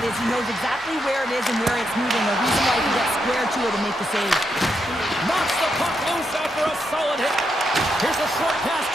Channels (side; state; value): both; normal; correlation 0.82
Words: is he knows exactly where it is and where it's moving. The reason why he can get square to it and make the save. Knocks the puck loose after a solid hit. Here's a short pass